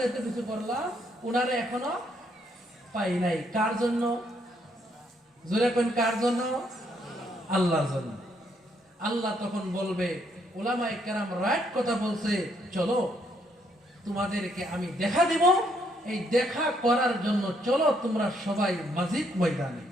এত কিছু করলাম উনারে এখনো পাই নাই। কার জন্য? জোরে কোন কার জন্য? আল্লাহর জন্য। আল্লাহ তখন বলবে, উলামায়ে কেরাম রাইট কথা বলছে, চলো তোমাদেরকে আমি দেখা দিব, এই দেখা করার জন্য চলো তোমরা সবাই মাজিদ ময়দানে।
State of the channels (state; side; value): normal; both; correlation 0.72